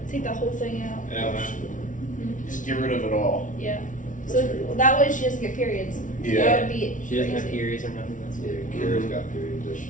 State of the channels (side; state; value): right; late; 0.37 ms